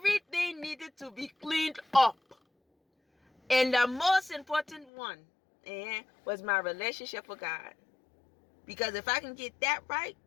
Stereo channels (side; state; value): right; drops out; at 4.9 s